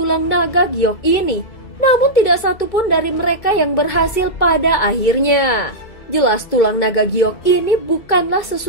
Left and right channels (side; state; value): right; late; 2.3 ms